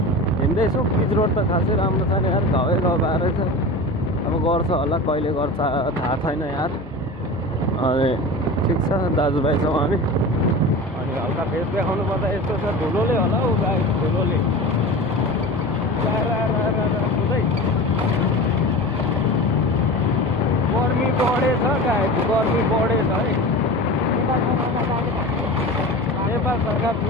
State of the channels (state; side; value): normal; both; correlation 0.31